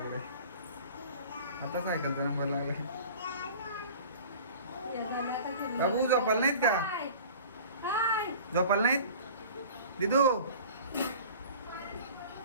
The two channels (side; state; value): both; inverted; correlation -0.42